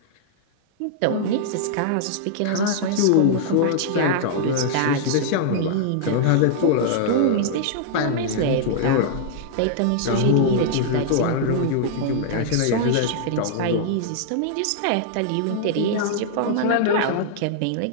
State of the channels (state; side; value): different; both; correlation -0.01